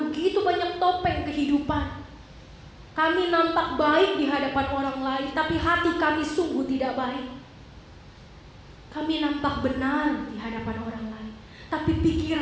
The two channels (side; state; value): both; identical; correlation 1.00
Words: banyak topeng kehidupan. Kami nampak baik di hadapan orang lain, tapi hati kami sungguh tidak baik. Kami nampak benar di hadapan orang lain, tapi